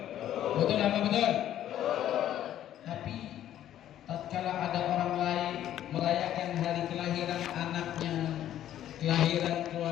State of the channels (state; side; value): quieter; right; 11.7 dB